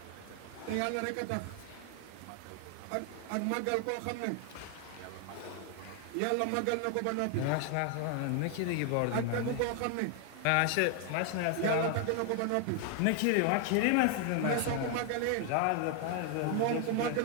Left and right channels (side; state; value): both; different; correlation 0.00